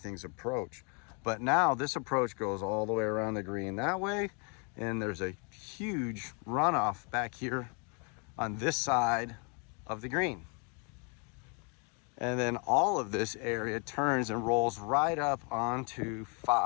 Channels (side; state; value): right; quieter; 35.8 dB